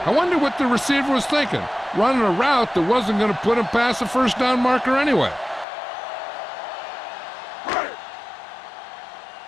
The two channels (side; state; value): right; drops out; at 5.7 s